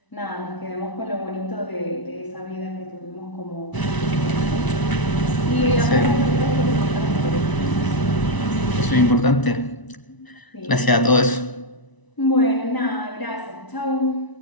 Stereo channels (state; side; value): late; right; 1.0 ms